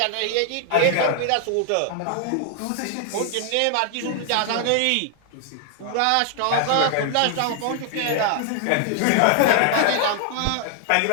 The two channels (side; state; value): both; different; correlation 0.00